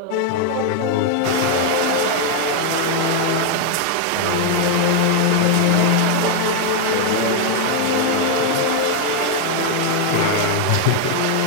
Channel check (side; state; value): both; different; correlation 0.01